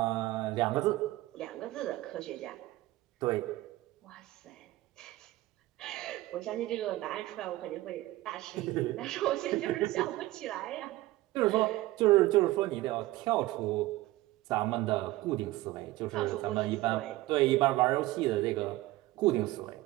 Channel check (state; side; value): quieter; left; 17.7 dB